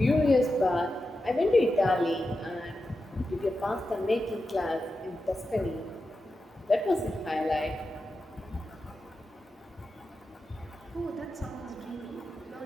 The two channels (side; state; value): both; normal; correlation 0.90